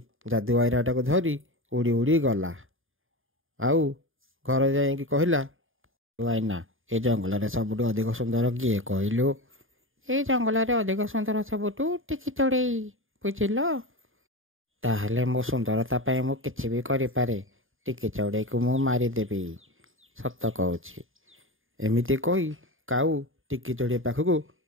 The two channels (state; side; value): late; left; 0.59 ms